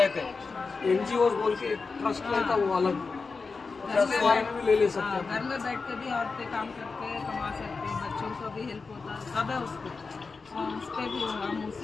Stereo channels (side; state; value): right; quieter; 4.5 dB